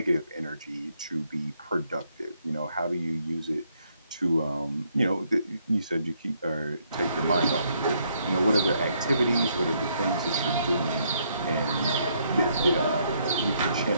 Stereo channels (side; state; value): both; inverted; correlation -0.72